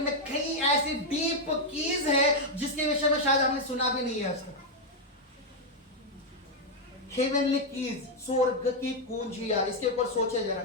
कई ऐसी डीप कीज है जिसके विषय में शायद हमने सुना भी नहीं है आज तक। हेवनली कीज, स्वर्ग की कुंजियां, इसके ऊपर सोचे जरा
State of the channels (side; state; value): both; normal; correlation 0.00